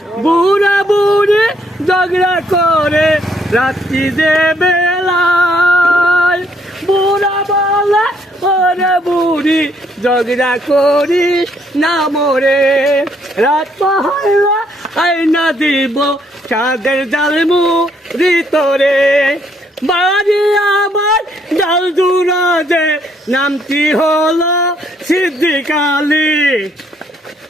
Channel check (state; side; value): normal; both; correlation 0.69